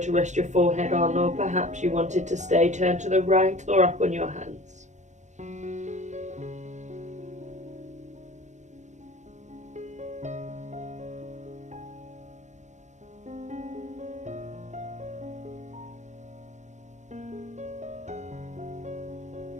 rest your forehead on, or perhaps you wanted to stay turned to the right or up on your hands.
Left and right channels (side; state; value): left; late; 0.34 ms